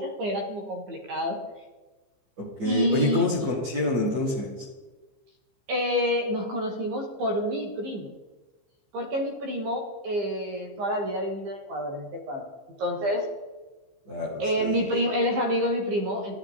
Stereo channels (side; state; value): left; late; 15 ms